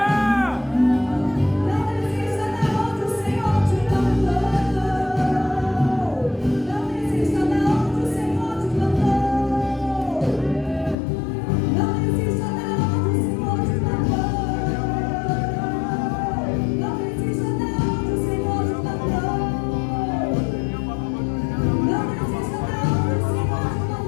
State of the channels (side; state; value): right; drops out; at 11.0 s